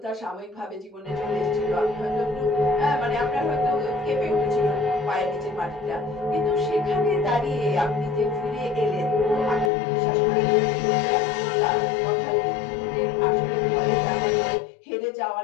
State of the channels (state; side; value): drops out; right; at 9.7 s